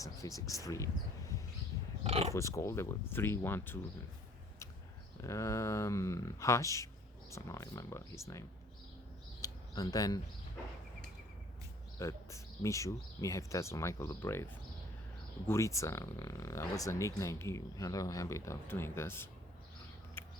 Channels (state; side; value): normal; both; correlation 0.56